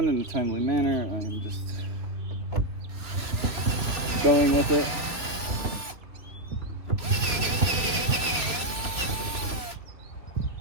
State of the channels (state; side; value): late; left; 2.9 ms